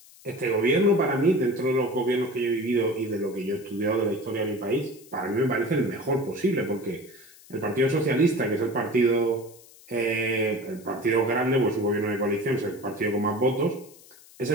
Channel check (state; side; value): noise; left; hiss, 23 dB below the sound